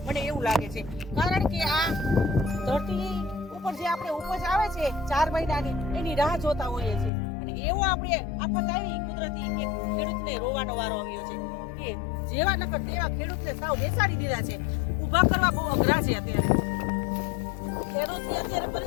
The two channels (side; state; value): right; drops out; at 7.1 s